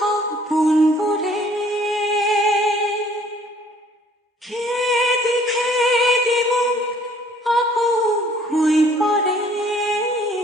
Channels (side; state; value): both; normal; correlation 0.58